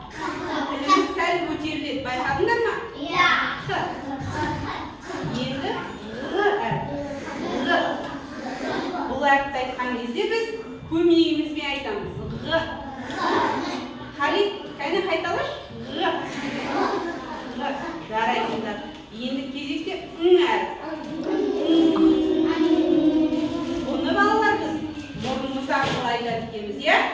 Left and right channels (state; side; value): identical; both; correlation 1.00